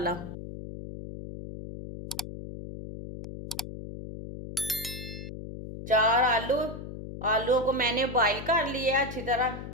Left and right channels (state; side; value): noise; left; hum, 10 dB below the sound